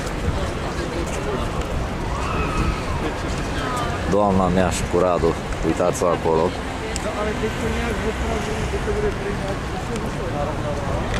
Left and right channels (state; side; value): identical; both; correlation 1.00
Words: Doamna mea și cu Radu, uitați-o acolo.